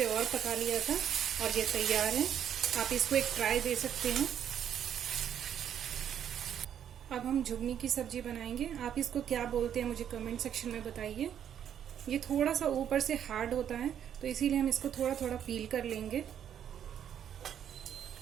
और पका लिया था और ये तैयार है। आप इसको एक ट्राई दे सकते हैं। अब हम झुगनी की सब्जी बनाएंगे। आप इसको क्या बोलते हैं मुझे कमेंट सेक्शन में बताइए। ये थोड़ा सा ऊपर से हार्ड होता है तो इसीलिए हम इसको थोड़ा थोड़ा पील कर लेंगे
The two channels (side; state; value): left; quieter; 9.4 dB